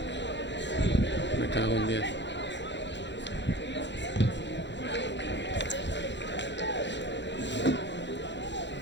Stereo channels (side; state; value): right; late; 0.52 ms